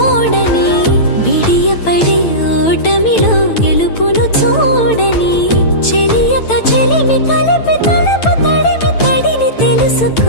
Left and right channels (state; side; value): late; right; 9.0 ms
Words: బిడియపడే ఓటమిలో గెలుపును చూడని చెలియతో చెలిమి కలిపి తలపు తడిమి తడిని